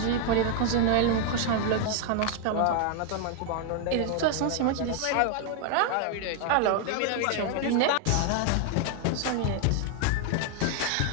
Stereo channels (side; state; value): both; different; correlation 0.00